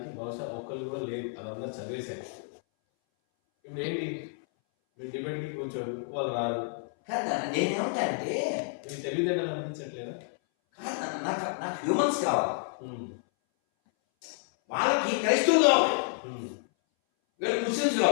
బహుశా ఒక్కరు కూడా లేదు, అదంతా చదివేశారు. ఇప్పుడు ఏంటి, మీరు డిబేట్కి కూర్చోరు, వాళ్ళు రారు కదా. నేనేమంటా అంటే మీకు తెలివితేటలు అనిపించట్లేదా? కాదు, నాకు హ్యూమన్స్ కావాలి, వాళ్ళకి క్రైస్తవులు కావాలి, వీళ్ళకి ముస్లిమ్స్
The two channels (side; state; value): right; silent; 58 dB below the other